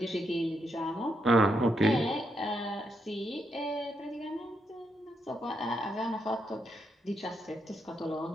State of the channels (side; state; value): both; normal; correlation 0.79